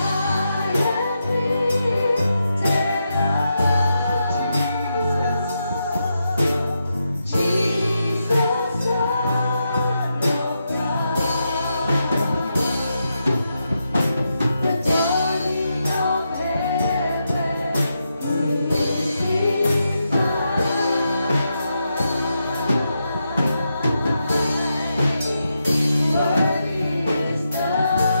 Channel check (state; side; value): inverted; both; correlation -0.85